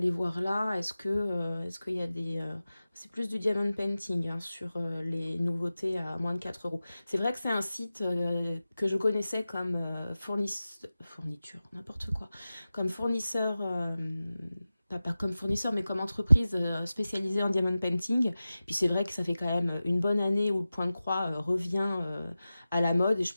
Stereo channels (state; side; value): inverted; both; correlation -0.95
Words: voir là. Est-ce qu'il y a des... c'est plus du diamond painting hein, sur les nouveautés à moins de 4 €. C'est vrai que c'est un site que je connaissais comme fourniture, n'importe quoi, comme fournisseur pas comme fournisseur, mais comme entreprise spécialisée en diamond painting. Puis c'est vrai que ça fait quand même une bonne année où le point de croix revient à la mode et je